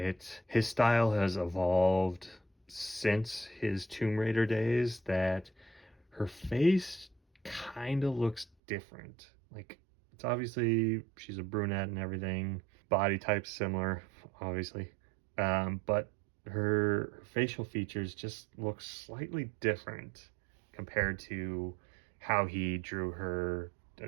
style has evolved since his Tomb Raider days, that her face kind of looks different. Like, it's obviously she's a brunette and everything, body type similar, obviously, but her facial features just look slightly different compared to how he drew her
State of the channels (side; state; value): left; drops out; at 8.5 s